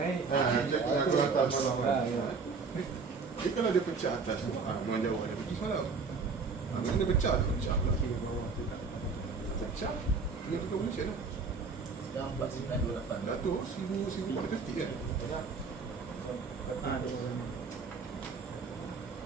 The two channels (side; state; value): left; quieter; 4.7 dB